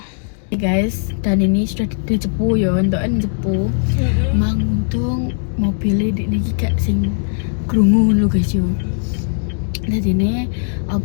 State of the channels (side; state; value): right; silent; digital silence